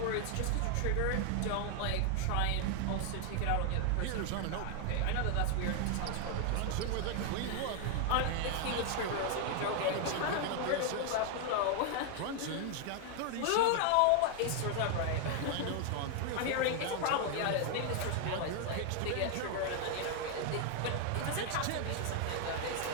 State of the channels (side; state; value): both; different; correlation 0.00